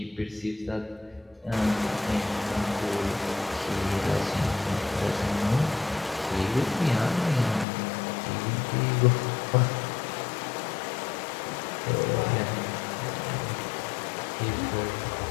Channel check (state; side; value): drops out; right; at 7.7 s